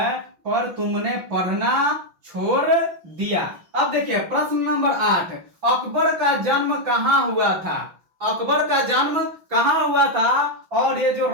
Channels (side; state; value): left; late; 6.0 ms